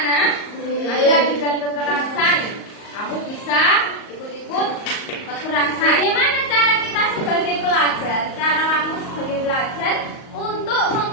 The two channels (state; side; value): late; right; 38 ms